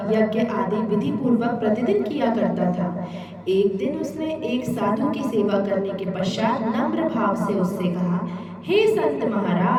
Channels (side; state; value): both; identical; correlation 1.00